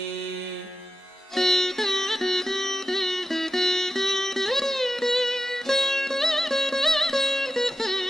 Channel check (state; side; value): normal; both; correlation 0.92